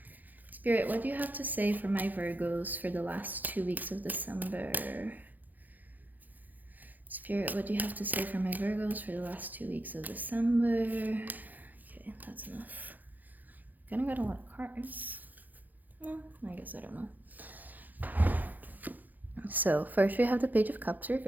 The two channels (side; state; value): left; late; 0.083 ms